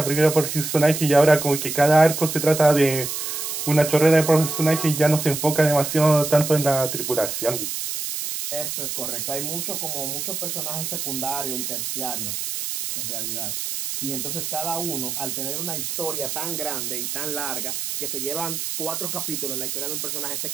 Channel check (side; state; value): right; noise; hiss, 4 dB below the sound